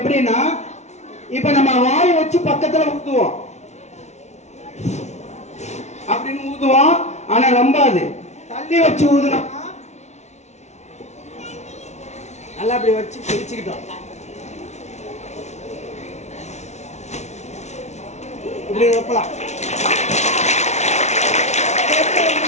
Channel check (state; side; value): late; right; 0.32 ms